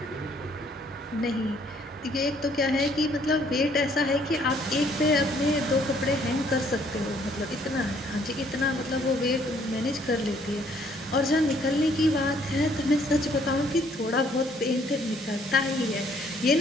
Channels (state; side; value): normal; both; correlation 0.64